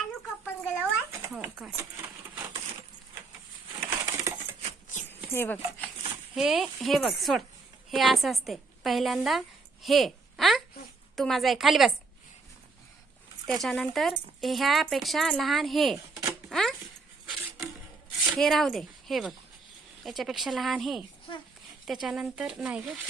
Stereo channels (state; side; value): quieter; left; 4.1 dB